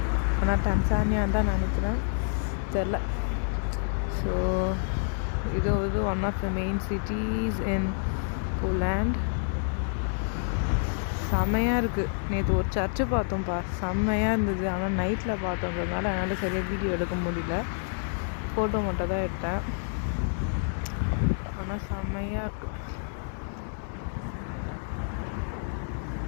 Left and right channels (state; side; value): silent; right; 59 dB below the other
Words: ஆனால் டன்சானியான்னு தான் நினைக்கிறேன், தெரில. ஸோ இது வந்து one of the main cities in Poland. செம்மையாக இருக்குது. நேற்று ஒரு சர்ச்சு பார்த்தோம்ப்பா, செம்மையாக இருந்தது. ஆனால் நைட்டில் பார்த்தோன்றதுனால என்னால் சரியாக வீடியோ எடுக்க முடியல, ஃபோட்டோ மட்டும் தான் எடுத்தேன். ஆனால் செம்மையாக இருக்குது.